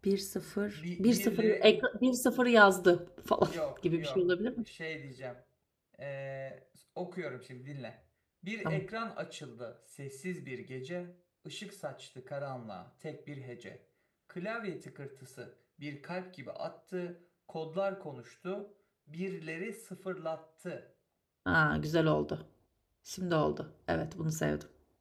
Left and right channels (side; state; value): both; identical; correlation 1.00